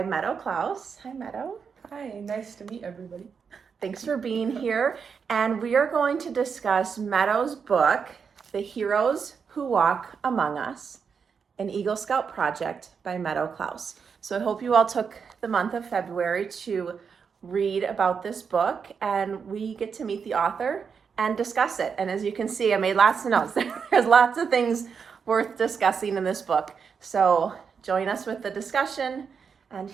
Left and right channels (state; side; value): quieter; left; 6.2 dB